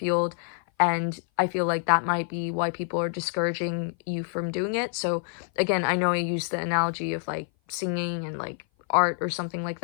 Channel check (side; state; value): right; silent; 56 dB below the other